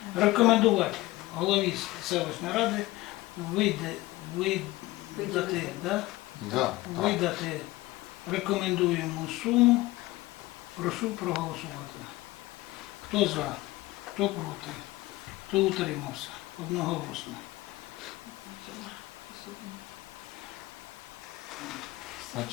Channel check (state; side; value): quieter; right; 19.0 dB